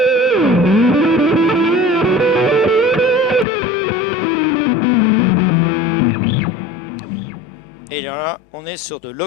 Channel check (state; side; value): drops out; right; at 3.5 s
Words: Et là, on est sur de